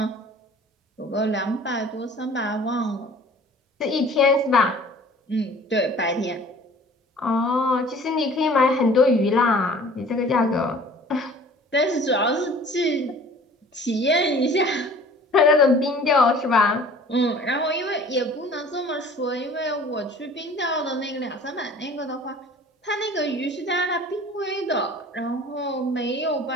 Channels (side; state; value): both; normal; correlation 0.48